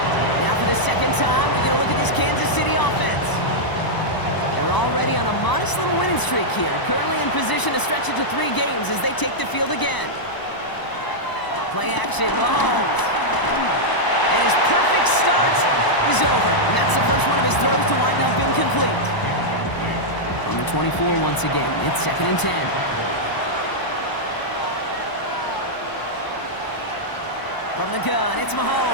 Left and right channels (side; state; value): right; late; 1.0 ms